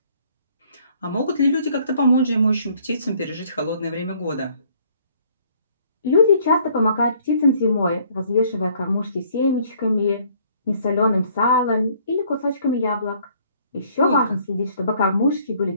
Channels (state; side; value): inverted; both; correlation -0.61